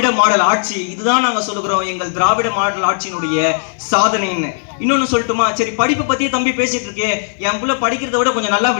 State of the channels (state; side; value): silent; right; digital silence